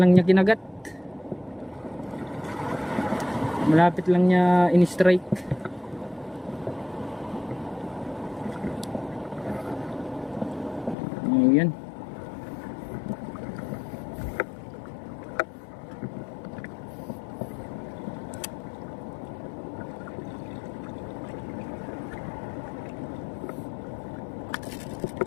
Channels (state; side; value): drops out; right; at 11.0 s